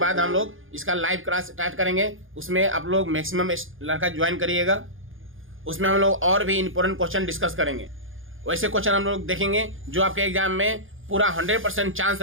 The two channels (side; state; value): left; late; 0.59 ms